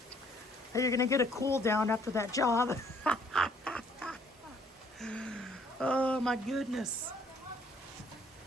Hey, you're gonna get a cool down after that job. Oh my goodness.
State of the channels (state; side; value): normal; both; correlation 0.62